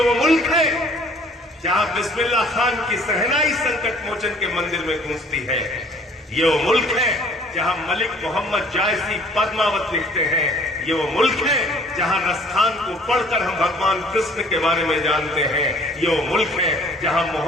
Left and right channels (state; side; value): normal; both; correlation 0.55